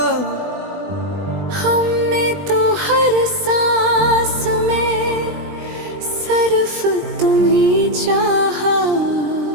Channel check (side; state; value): left; late; 20 ms